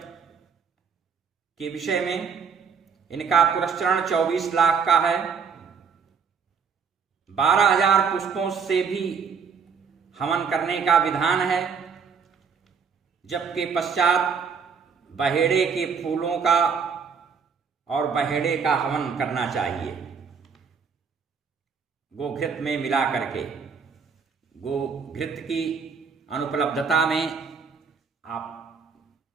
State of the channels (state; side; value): quieter; left; 6.1 dB